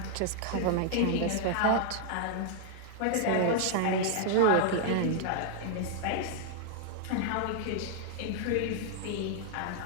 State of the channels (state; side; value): different; both; correlation -0.01